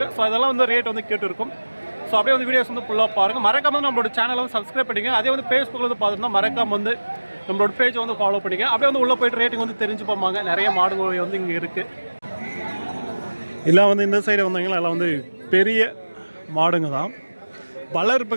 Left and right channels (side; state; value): both; inverted; correlation -1.00